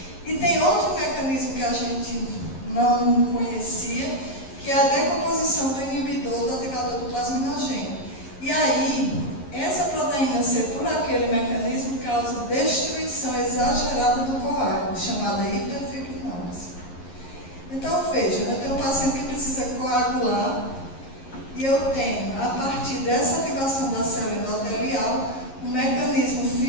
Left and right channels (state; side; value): late; right; 11 ms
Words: E tem outro mecanismo que a gente não conhecia, que é a decomposição do inibidor do ativador do plasminogênio. E aí, essa proteína C, por aquele mecanismo, causa destruição exagerada do coágulo. chamada hiperfibrinose. Então, veja, eu tenho um paciente que precisa coagular e eu tenho, a partir dessa ativação da célula endotelial, um mecanismo